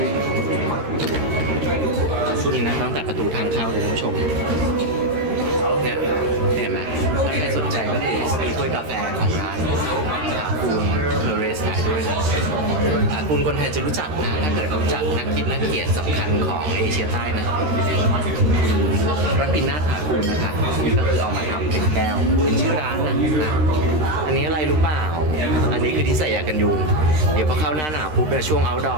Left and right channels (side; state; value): left; late; 13 ms